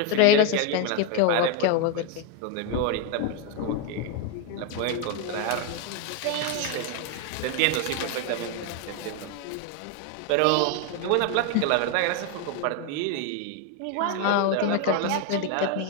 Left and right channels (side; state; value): both; different; correlation 0.01